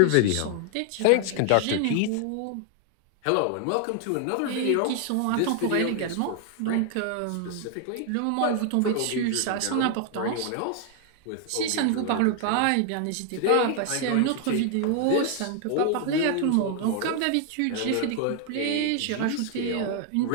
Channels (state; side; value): different; both; correlation 0.00